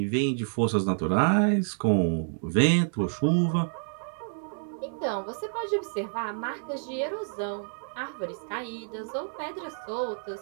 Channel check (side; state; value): left; silent; digital silence